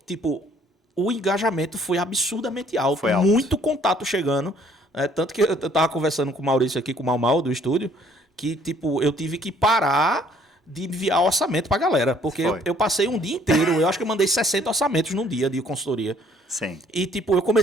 tipo, o engajamento foi absurdamente alto. Foi alto. Muito contato chegando. Tanto que eu tava conversando com o Maurício aqui, com o Mal do estúdio, que tipo, eu tive que parar de enviar orçamento pra galera. Porque eu passei um dia inteiro, eu acho que eu mandei 60 orçamentos num dia de consultoria. Sim. E tipo, eu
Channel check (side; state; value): both; normal; correlation 0.60